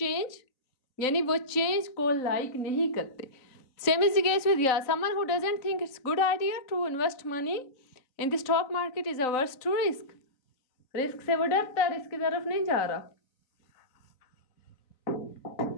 यानी वो चेंज को लाइक नहीं करते. Same is the case with someone who doesn't think it's good idea to invest money in the stock market is averse to risk. Risk से वो डरता है, risk की तरफ नहीं जा रहा.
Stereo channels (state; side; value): late; right; 3.9 ms